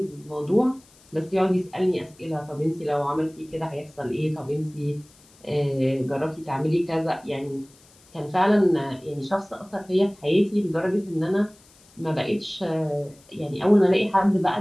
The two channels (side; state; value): left; noise; hiss, 28 dB below the sound